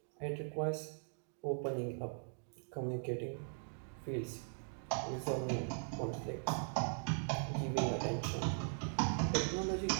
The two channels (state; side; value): silent; left; 51 dB below the other